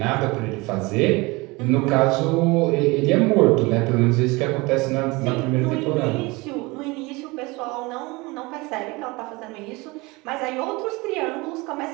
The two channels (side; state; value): left; quieter; 24.1 dB